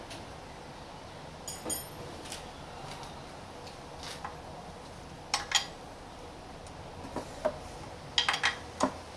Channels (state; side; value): identical; both; correlation 1.00